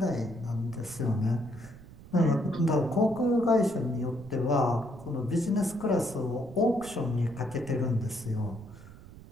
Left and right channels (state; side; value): noise; right; rumble, 18 dB below the sound